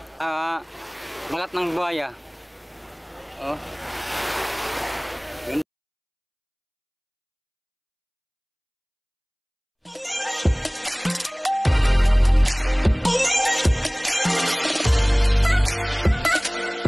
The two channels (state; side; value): identical; both; correlation 1.00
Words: Balat ng buhaya. Oh.